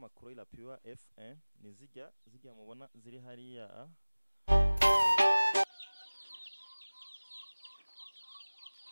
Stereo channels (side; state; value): both; inverted; correlation -1.00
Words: irapiwa F1 ni zijya mubona ziri hariya